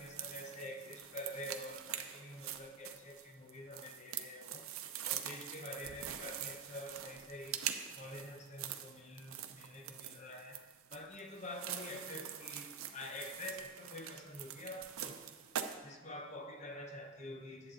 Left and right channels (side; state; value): left; quieter; 4.4 dB